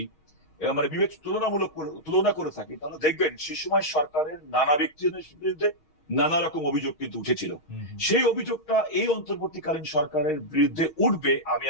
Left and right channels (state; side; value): late; right; 6.4 ms